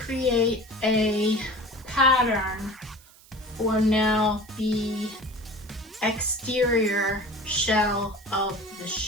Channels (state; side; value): noise; right; hiss, 25 dB below the sound